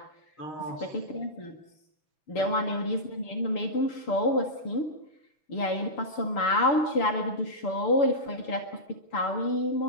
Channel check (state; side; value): late; right; 6.8 ms